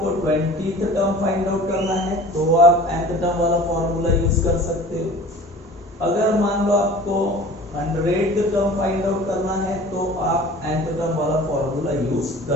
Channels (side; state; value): both; normal; correlation 0.43